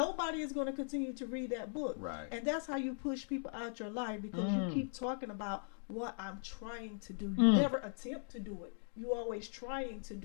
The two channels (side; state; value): right; silent; digital silence